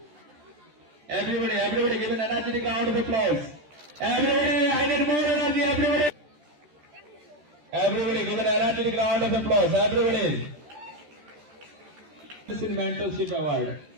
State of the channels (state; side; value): late; left; 13 ms